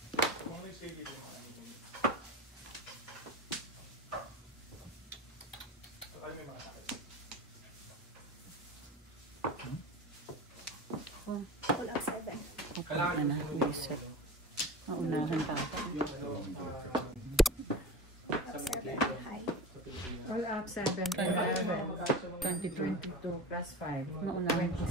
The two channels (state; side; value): normal; both; correlation 0.31